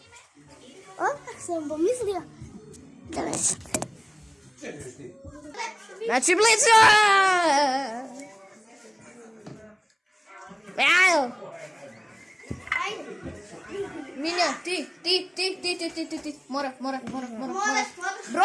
Odmah sam pomislio da me sad. Znači blizu! Evo! Milja, ti. Mora.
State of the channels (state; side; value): identical; both; correlation 1.00